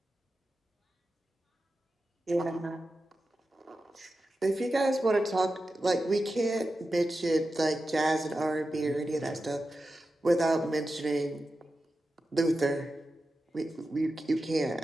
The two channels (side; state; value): both; normal; correlation 0.91